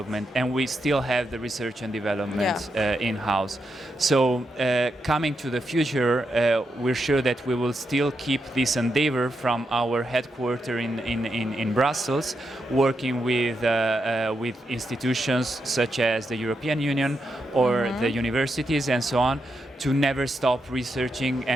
and we still have the research and development in-house. So coming to the future, we're sure that we will still keep this endeavor from our headquarters in Brussels, working with institutions such as the European Union or the universities and so on, to never stop researching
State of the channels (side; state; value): both; normal; correlation 0.84